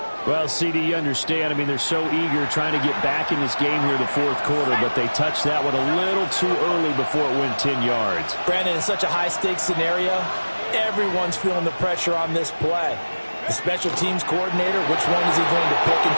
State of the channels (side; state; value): both; inverted; correlation -1.00